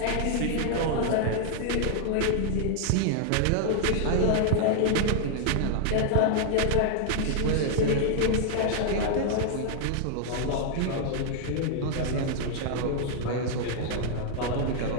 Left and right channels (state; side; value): different; both; correlation 0.00